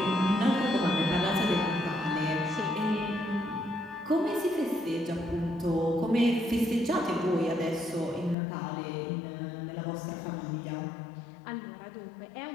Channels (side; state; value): right; drops out; at 8.3 s